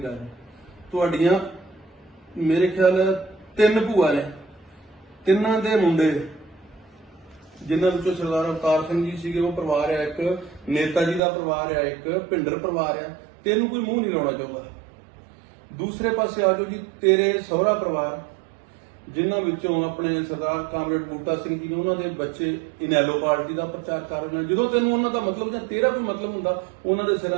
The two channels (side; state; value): left; drops out; at 11.2 s